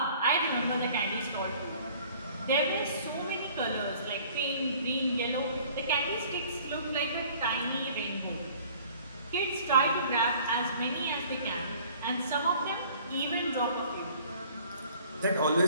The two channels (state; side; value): inverted; both; correlation -0.53